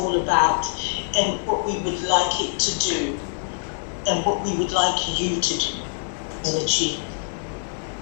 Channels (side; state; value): right; silent; 58 dB below the other